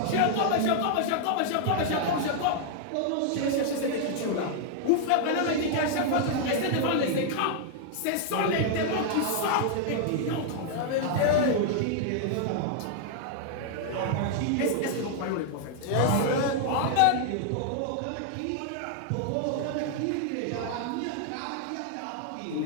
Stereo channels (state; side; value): different; both; correlation 0.00